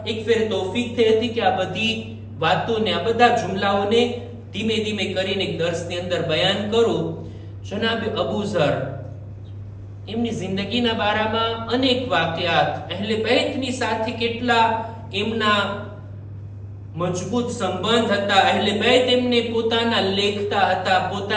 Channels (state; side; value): identical; both; correlation 1.00